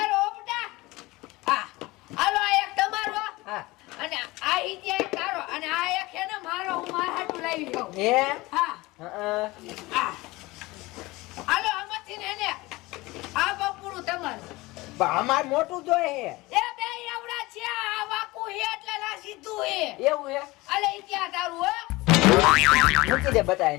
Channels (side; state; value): right; quieter; 21.1 dB